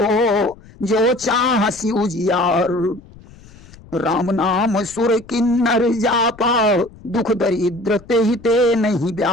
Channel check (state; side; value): noise; left; rumble, 22 dB below the sound